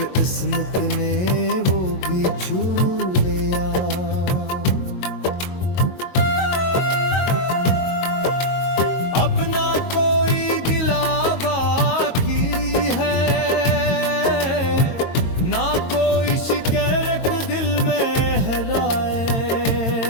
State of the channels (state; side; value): late; right; 22 ms